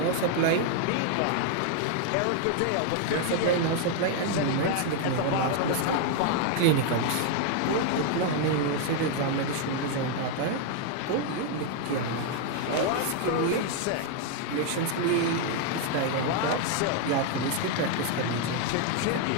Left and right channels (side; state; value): both; different; correlation 0.00